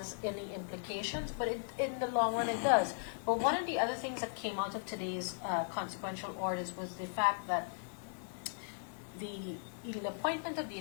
any implications, but in the long run it does. But one of the other things that came out of today's consequential orders was the fact that the appointment of the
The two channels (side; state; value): right; silent; digital silence